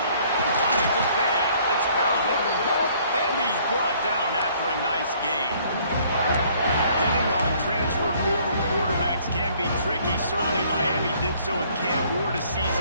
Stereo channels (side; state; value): both; inverted; correlation -0.60